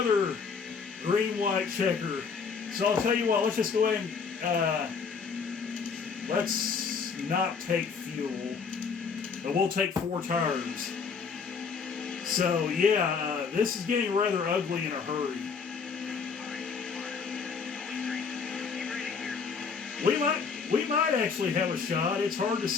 green-white checker. So I'll tell you what, let's just go ahead and let's not take fuel, but we'll take 4 tires. So yeah, this is getting rather ugly in a hurry. We might actually have a shot. It's hard to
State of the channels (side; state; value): right; quieter; 5.6 dB